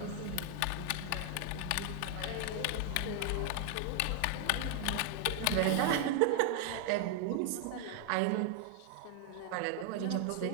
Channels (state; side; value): different; both; correlation 0.00